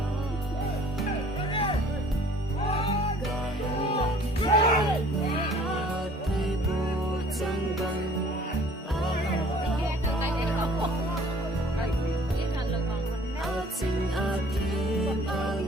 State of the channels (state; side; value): normal; both; correlation 0.53